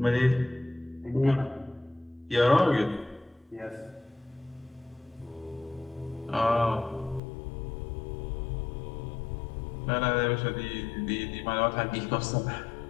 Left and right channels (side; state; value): right; drops out; at 7.2 s